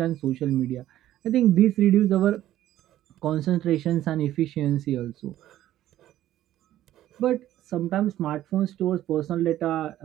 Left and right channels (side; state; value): left; quieter; 13.4 dB